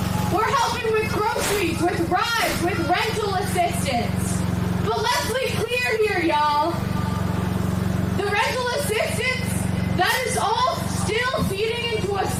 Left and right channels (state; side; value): identical; both; correlation 1.00